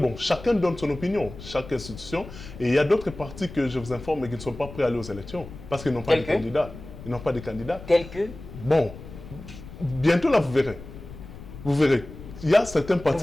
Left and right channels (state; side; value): noise; left; rumble, 14 dB below the sound